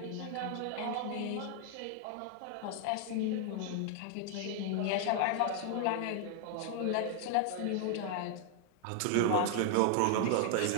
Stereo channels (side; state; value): both; different; correlation 0.00